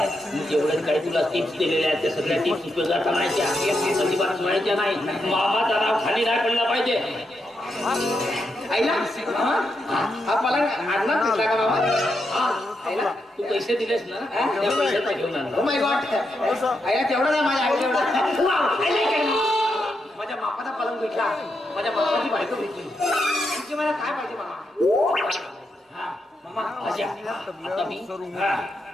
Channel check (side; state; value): both; normal; correlation 0.83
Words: जेवढे काही तुला टिप्स दिलेल्या आहेत त्या सगळ्या टिप्स उपयोगात आणायच्या. अजिबात सोडायच्या नाही. मामाचा नाव खाली नाही पडला पाहिजे. आईला हा मला आणणार तुला का बाबा. आईला तू पैसे दिलेस ना त्या पैशाचा घेऊन आणला. Oh my God. आईला तेवढा नाही माझ्या आई तेवढा. माझ्या बापाचा पलंग भेटला. माझ्या बापाची बायको भेटली. तुझी मला काय पाहिजे मामा. हा मामा भाषा आता मी